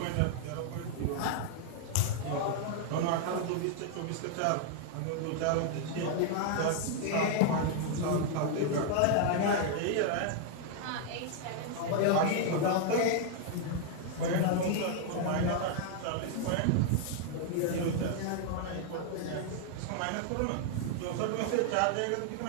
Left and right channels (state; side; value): different; both; correlation 0.00